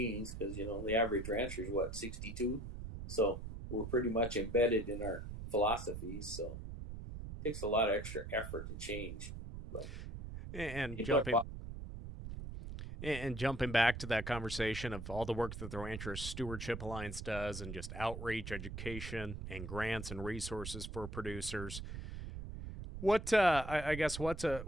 because, the average rancher is 62. So we're pretty much embedded in our philosophies, so it takes a lot of extra effort to change. But and jumping back to that conversation of all the work that the Ranchers Stewardship Alliance does, and just outreach, education, and grants and resources for producers, what I guess what's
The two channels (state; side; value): noise; right; rumble, 8 dB below the sound